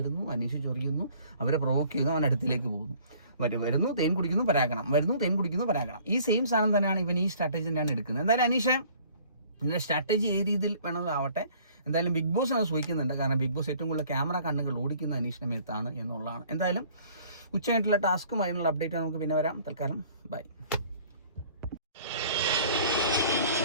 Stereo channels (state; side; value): inverted; both; correlation -0.55